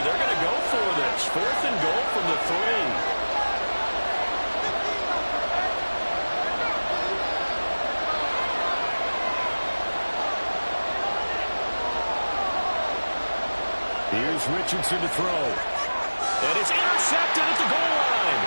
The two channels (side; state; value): both; inverted; correlation -1.00